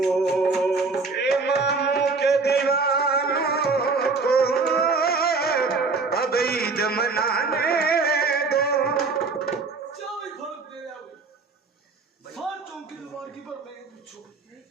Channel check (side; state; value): left; quieter; 4.3 dB